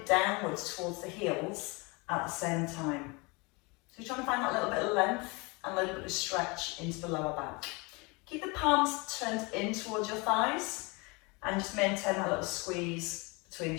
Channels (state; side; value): quieter; right; 27.7 dB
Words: downwards towards the heels at the same time. So you're trying to find that little bit of length and a little bit of stretch into the lower back. Keep the palms turned in towards your thighs and just maintain that little squeeze between the